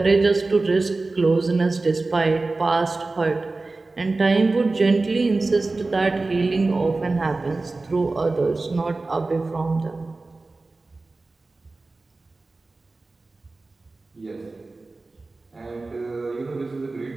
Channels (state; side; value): quieter; left; 3.4 dB